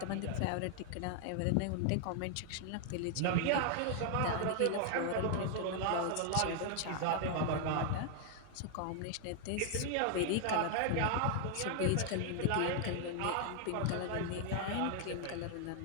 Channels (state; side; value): different; both; correlation 0.00